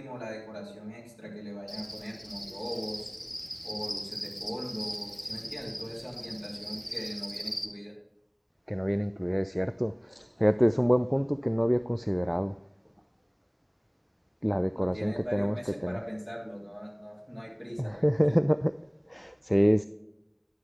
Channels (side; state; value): both; identical; correlation 1.00